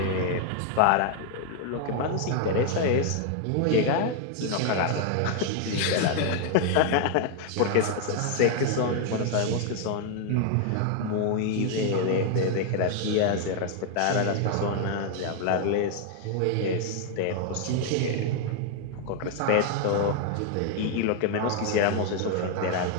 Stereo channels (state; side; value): different; both; correlation 0.00